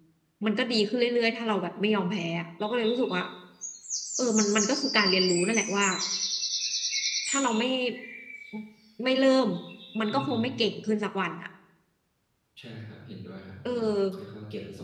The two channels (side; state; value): both; identical; correlation 1.00